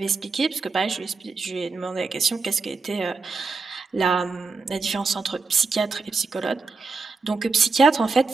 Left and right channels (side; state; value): left; quieter; 4.3 dB